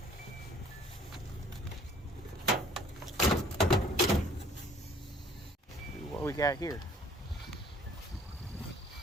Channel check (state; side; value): normal; both; correlation 0.56